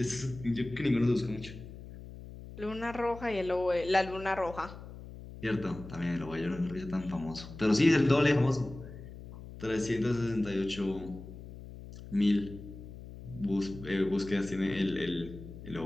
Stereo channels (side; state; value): left; noise; hum, 14 dB below the sound